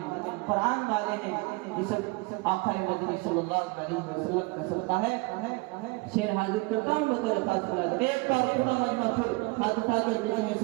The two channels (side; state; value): left; quieter; 25.4 dB